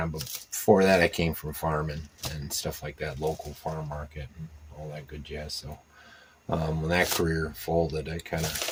but before that I came from farming and stuff like that, local farm market and all that good jazz. So when that career folded, I kind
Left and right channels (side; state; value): both; identical; correlation 1.00